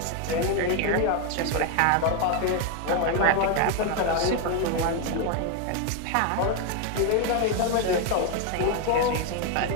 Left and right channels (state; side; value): different; both; correlation 0.01